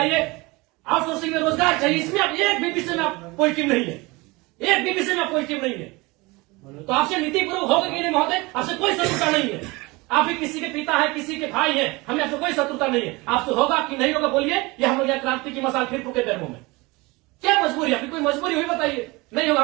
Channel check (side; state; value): left; quieter; 23.9 dB